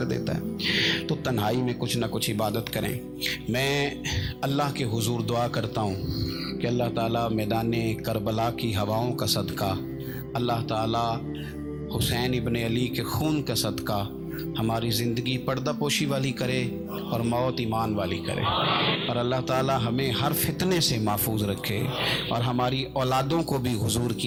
دیتا ہے. تو تنہائی میں کچھ نہ کچھ عبادت کریں. میں اللہ کے حضور دعا کرتا ہوں کہ اللہ تعالیٰ میدان کربلا کی ہواؤں کا صدقہ، اللہ تعالیٰ حسین ابن علی کے خون کا صدقہ ہماری زندگی پردہ پوشی والی کرے اور موت ایمان والی کرے، اور اللہ تعالیٰ ہمیں ہر فتنے سے محفوظ رکھے اور ہماری اولادوں کو بھی حضور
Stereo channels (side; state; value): both; identical; correlation 1.00